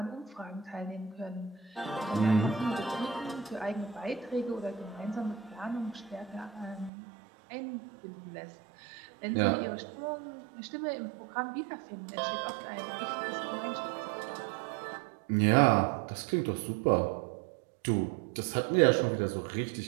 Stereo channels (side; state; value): left; drops out; at 6.9 s